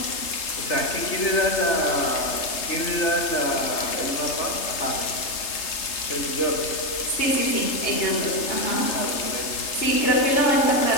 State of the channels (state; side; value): late; right; 3.3 ms